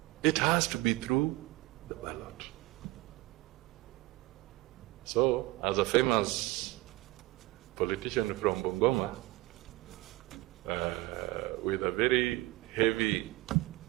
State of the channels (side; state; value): left; quieter; 19.8 dB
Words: It has to be through the ballot. So, as a famous politician from Bungoma, with a very heavy